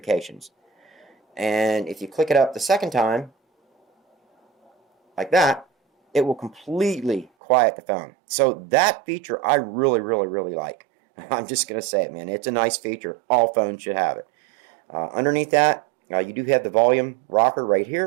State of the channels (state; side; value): drops out; left; at 7.3 s